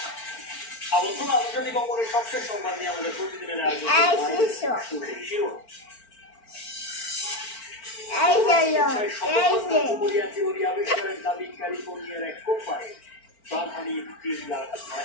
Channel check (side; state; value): right; late; 4.4 ms